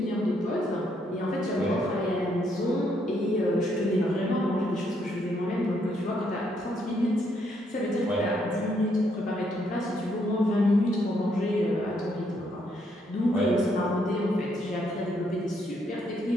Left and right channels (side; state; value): both; normal; correlation 0.73